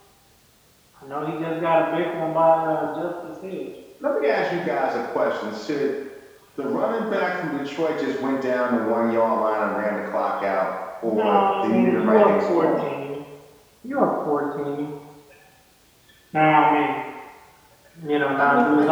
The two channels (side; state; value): both; identical; correlation 1.00